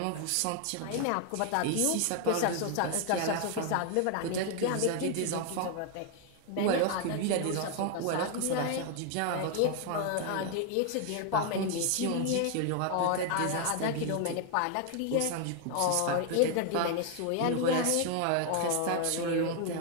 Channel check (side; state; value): both; different; correlation 0.00